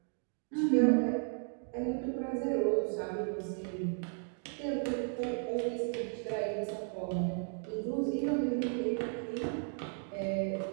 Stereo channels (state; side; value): silent; left; 55 dB below the other